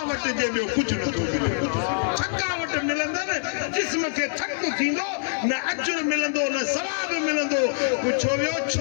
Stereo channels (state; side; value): silent; right; 58 dB below the other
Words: जे ॿियो कुझु नथो मिले थकावट मिलंदनि जिस्म खे थक थींदो न अजुर मिलंदो न सवाब मिलंदो पुछो वियो